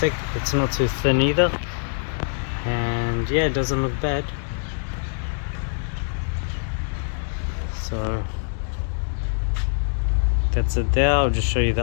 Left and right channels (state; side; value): silent; right; digital silence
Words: it's not too thin either, and yeah, it doesn't look bad. So that's it there. I'll just show you